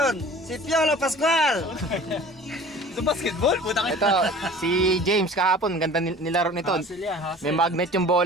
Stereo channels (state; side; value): normal; both; correlation 0.44